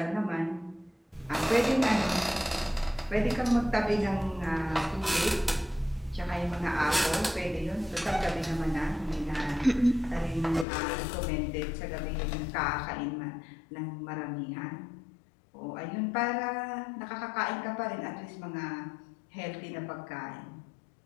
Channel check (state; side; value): drops out; right; at 10.7 s